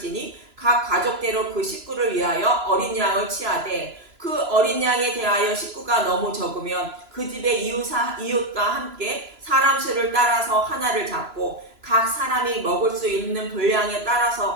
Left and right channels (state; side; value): late; left; 3.0 ms